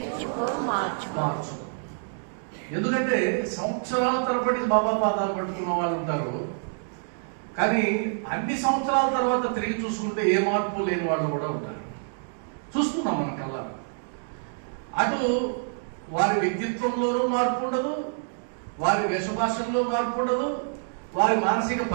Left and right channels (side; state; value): left; silent; digital silence